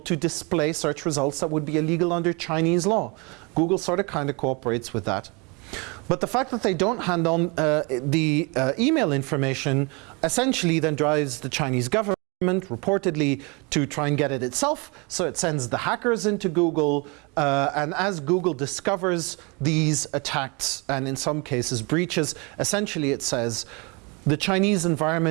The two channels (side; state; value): left; quieter; 29.7 dB